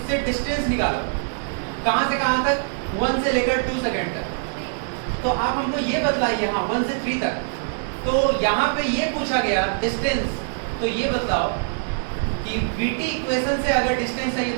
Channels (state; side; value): silent; left; digital silence